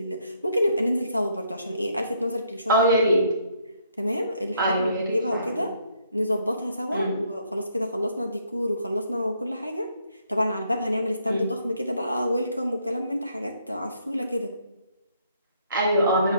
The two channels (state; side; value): inverted; both; correlation -0.70